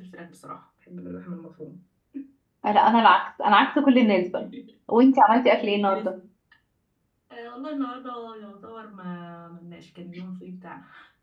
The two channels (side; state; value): both; identical; correlation 1.00